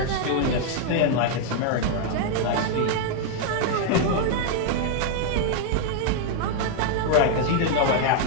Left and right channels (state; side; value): different; both; correlation 0.00